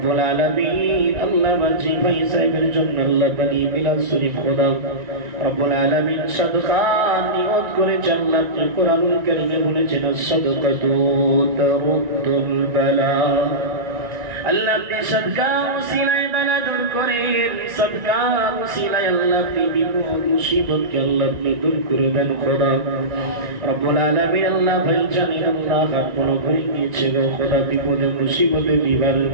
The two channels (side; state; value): left; late; 1.9 ms